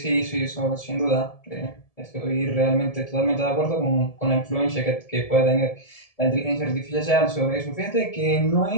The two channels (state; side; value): late; right; 1.7 ms